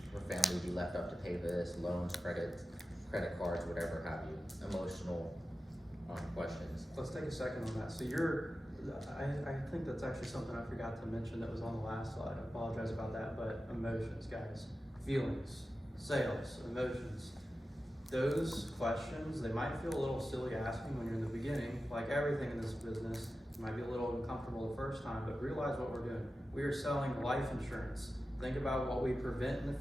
family would be left up to pay this, loans, credit cards, whatever have you, emotional questions. Let's take a second on that. So I think that's actually something I forgot to mention that was on the last slide. I apologize about that, but emotions, guys. Feelings, sales, emotions. Those questions, they might feel a little silly asking when you're in the beginning. Like everything in this business, you might be a little uncomfortable the first time, but realize what we're doing. We are selling life insurance. Think about what we prevent in the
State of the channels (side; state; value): both; normal; correlation 0.93